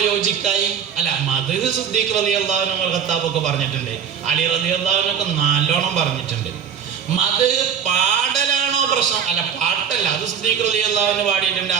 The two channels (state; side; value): quieter; left; 7.8 dB